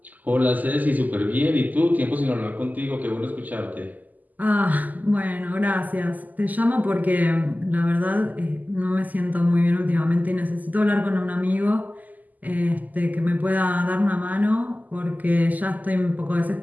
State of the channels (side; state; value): left; late; 0.081 ms